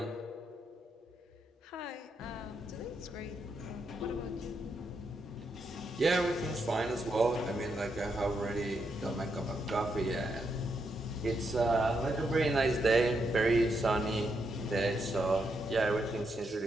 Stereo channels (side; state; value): both; normal; correlation 0.81